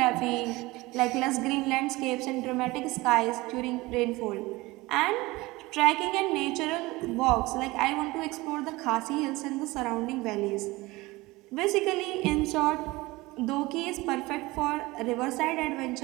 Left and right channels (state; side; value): quieter; left; 21.1 dB